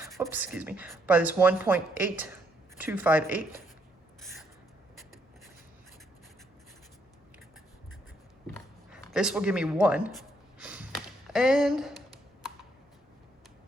by this 1.8258. This will give me 1. And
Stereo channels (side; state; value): both; normal; correlation 0.73